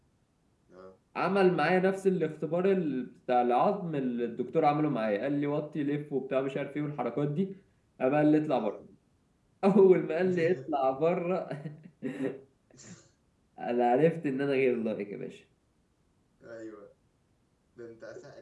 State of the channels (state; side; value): identical; both; correlation 1.00